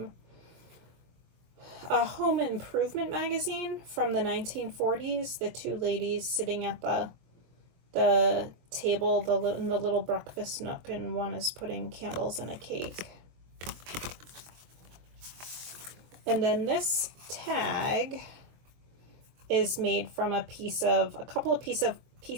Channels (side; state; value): left; late; 23 ms